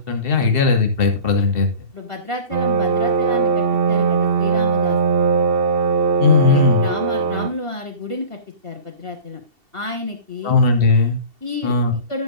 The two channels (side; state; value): left; late; 2.7 ms